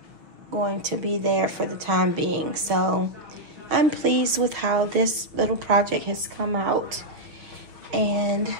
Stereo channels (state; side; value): late; left; 6.2 ms